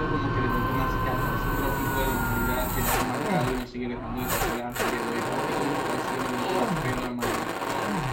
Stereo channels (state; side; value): identical; both; correlation 1.00